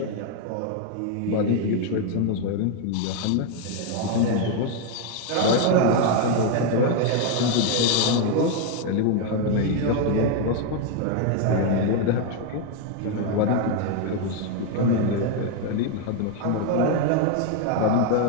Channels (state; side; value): different; both; correlation 0.01